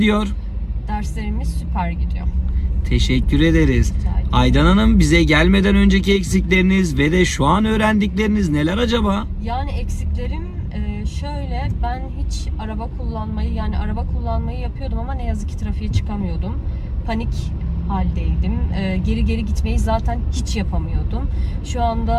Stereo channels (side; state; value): both; identical; correlation 1.00